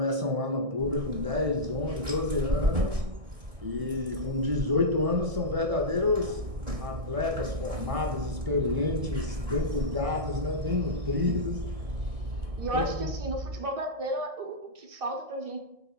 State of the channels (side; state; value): left; late; 1.6 ms